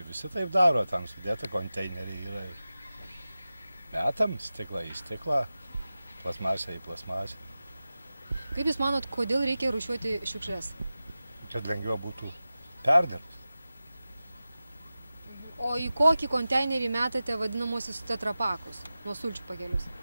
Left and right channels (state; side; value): inverted; both; correlation -0.94